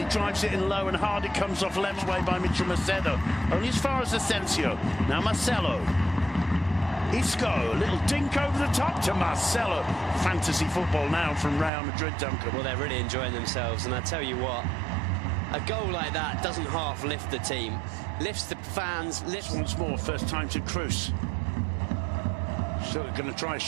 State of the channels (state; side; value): drops out; left; at 11.7 s